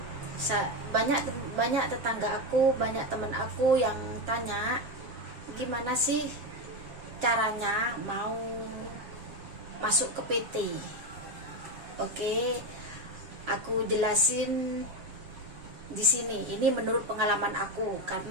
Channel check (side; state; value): left; late; 7.5 ms